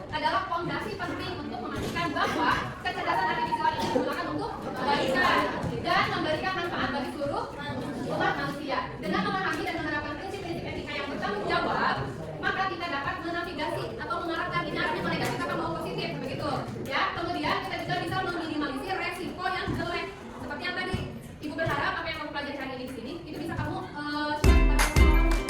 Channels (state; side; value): identical; both; correlation 1.00